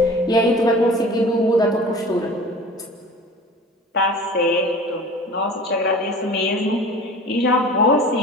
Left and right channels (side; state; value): both; normal; correlation 0.41